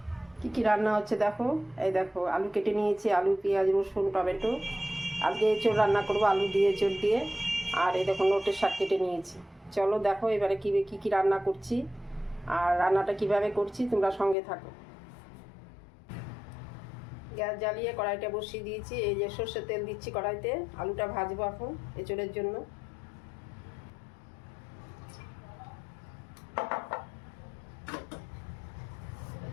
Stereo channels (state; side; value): drops out; right; at 14.4 s